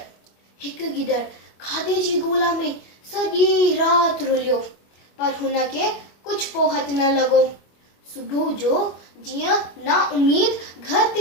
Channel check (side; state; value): right; late; 25 ms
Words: हिकु गिदड़ खाधे जी ॻोल्हा में सॼी राति रुलियो, पर हुनखे कुझु पोहत न लॻो। सुबुह जो जीअं ना उमीद घर